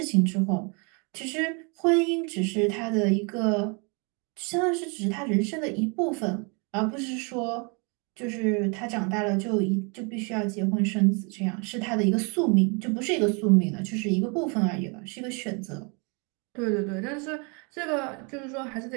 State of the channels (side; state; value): left; quieter; 33.1 dB